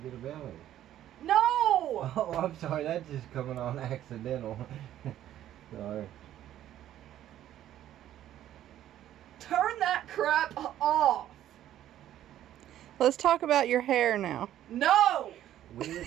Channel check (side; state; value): left; quieter; 12.2 dB